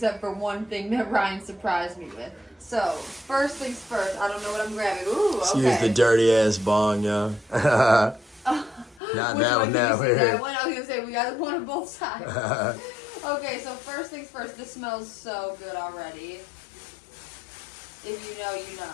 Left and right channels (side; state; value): right; drops out; at 9.0 s